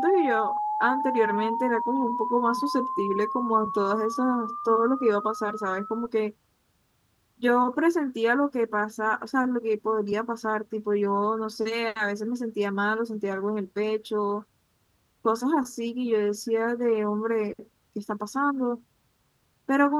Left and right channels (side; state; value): both; identical; correlation 1.00